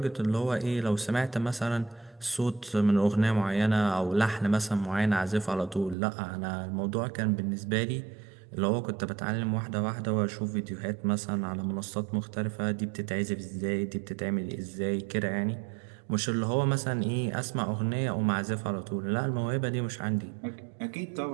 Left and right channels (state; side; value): drops out; left; at 6.0 s